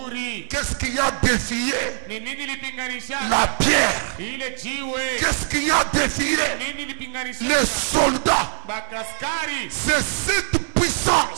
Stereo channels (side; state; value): left; silent; 63 dB below the other